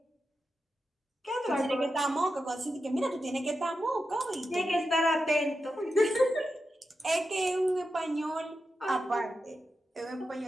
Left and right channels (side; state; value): both; normal; correlation 0.89